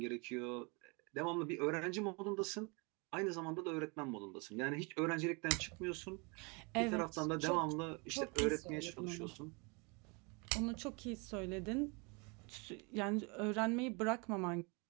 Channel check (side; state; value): left; quieter; 30.7 dB